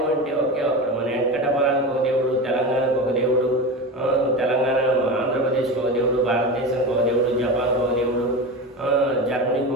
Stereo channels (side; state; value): both; normal; correlation 0.25